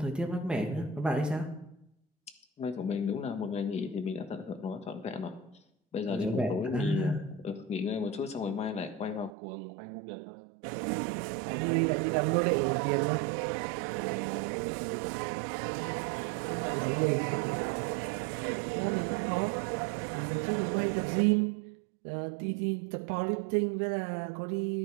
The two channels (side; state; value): left; drops out; at 9.3 s